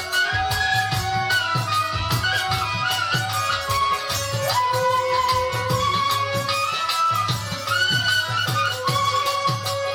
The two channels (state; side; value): identical; both; correlation 1.00